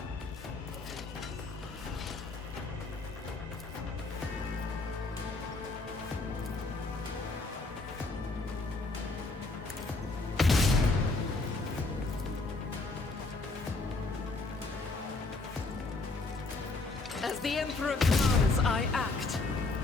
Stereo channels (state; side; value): quieter; right; 3.4 dB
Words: As the Emperor commands, I act.